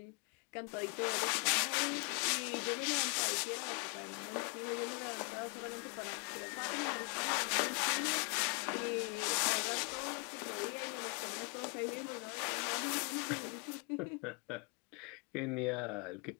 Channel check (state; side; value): quieter; right; 35.0 dB